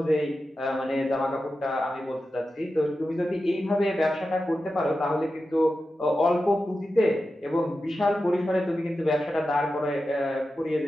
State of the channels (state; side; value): normal; both; correlation 0.91